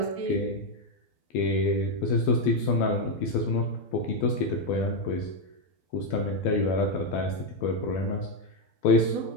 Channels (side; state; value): right; late; 12 ms